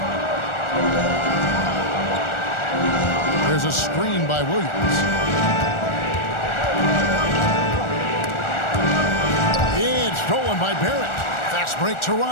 There's a screen by Williams. It's stolen by Barrett. Fast break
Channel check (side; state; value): right; late; 1.4 ms